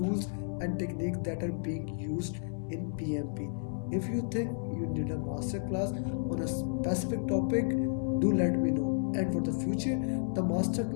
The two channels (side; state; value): right; silent; 56 dB below the other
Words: and techniques that are being used in PMP. If you think you need a master class on a specific topic, do let me know. And for the future, the master